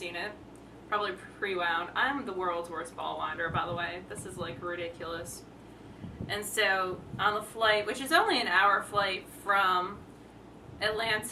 it. Probably pre-wound. I'm the world's worst ball winder, by the way. This is ridiculous. And so on the flight, which is only an hour flight from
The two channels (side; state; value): both; identical; correlation 1.00